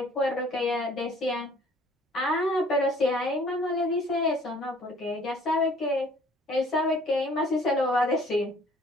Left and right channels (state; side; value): normal; both; correlation 0.56